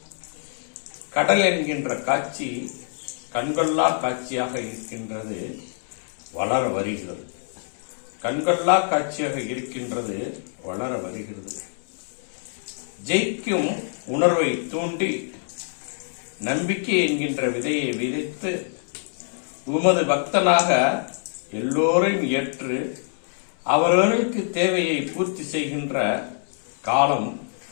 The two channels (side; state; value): right; silent; 62 dB below the other